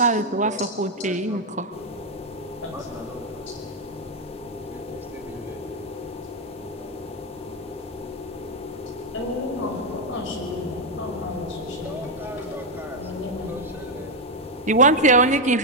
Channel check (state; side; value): normal; both; correlation 0.03